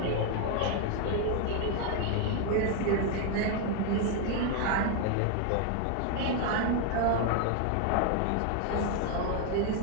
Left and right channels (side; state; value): both; different; correlation 0.01